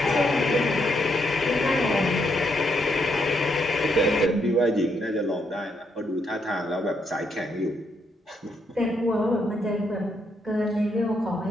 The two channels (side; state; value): both; normal; correlation 0.77